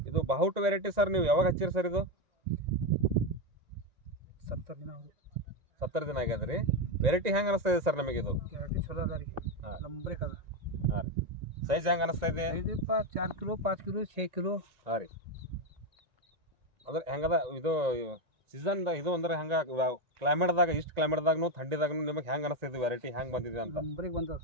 ಇದು ಬಾಹುಟ್ ವೆರೈಟಿ ಸರ್. ನೀವು ಯಾವಾಗ ಹಚ್ಚಿರಿ ಸರ್? ಇದು 70 ದಿನ ಆಗ್ಯದ್ರಿ. ವೆರೈಟಿ ಹೆಂಗೆ ಅನಿಸ್ತಾ ಇದೆ ಸರ್ ನಮಗೆ? ಇದು ಹಾಂ ರೀ. ಸೈಜ್ ಹೆಂಗೆ ಅನಿಸ್ತಾ ಇದೆ? 4 ಕಿಲೋ 5 ಕಿಲೋ 6 ಕಿಲೋ. ಹಾಂ ರೀ. ಅಂದ್ರೆ ಹೆಂಗದ ಇದು ಸೀಸನ್ ಇದು ಅಂದ್ರೆ ಹಂಗೆ ಕ್ಲೈಮೇಟ್ದಾಗ, ಇಷ್ಟು ಕ್ಲೈಮೇಟ್ದಾಗೂ ಥಂಡಿದಾಗೂ ನಿಮಗೆ ಹೆಂಗೆ ಅನಿಸ್ತೈತಿ? ವೆರೈಟಿ ಹೆಂಗೆ ಬಂದಿದೆ ಅಂತ? ನಂಬರಿಗೆ ಬಂದದ.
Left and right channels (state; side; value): late; left; 1.9 ms